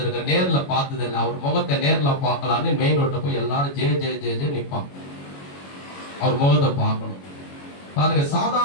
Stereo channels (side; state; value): right; late; 21 ms